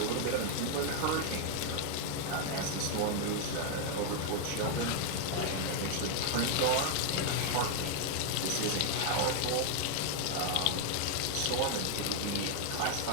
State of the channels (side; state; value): both; different; correlation 0.00